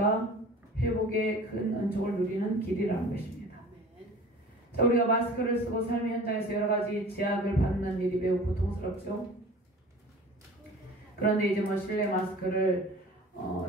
회복의 큰 은총을 누리는 길이라는 것입니다. 자, 우리가 마스크를 쓰고 삶의 현장에서 여러 가지 제약을 받는 일이 매우 고통스럽죠. 그런데 이제 실내 마스크를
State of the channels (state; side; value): normal; both; correlation 0.42